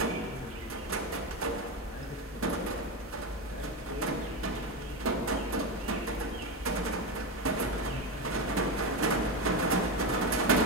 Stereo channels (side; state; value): both; normal; correlation 0.15